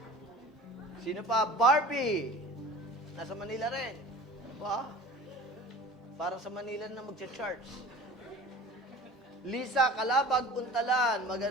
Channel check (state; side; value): normal; both; correlation 0.41